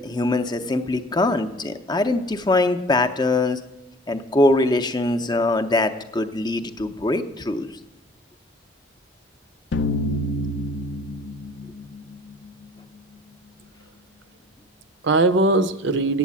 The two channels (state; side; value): normal; both; correlation 0.48